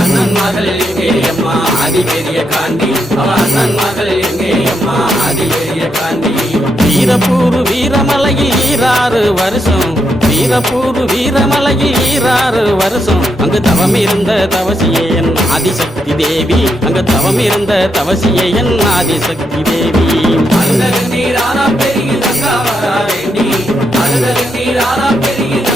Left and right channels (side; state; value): both; normal; correlation 0.81